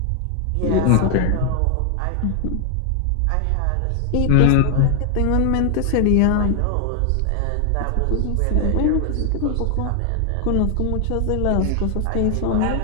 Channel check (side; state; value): both; different; correlation 0.00